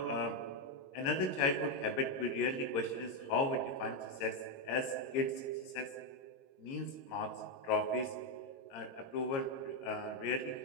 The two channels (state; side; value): late; right; 22 ms